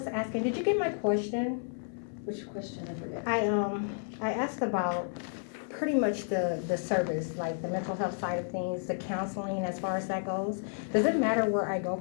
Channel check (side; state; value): right; silent; 57 dB below the other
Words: asking, did you get my question? Which question, I forget. I asked about pretty much the service, like the mental health side of things, the counseling as far as that goes. Does it matter where I go